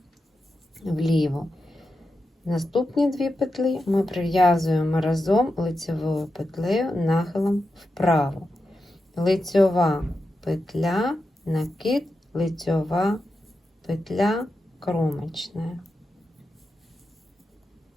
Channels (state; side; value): normal; both; correlation 0.89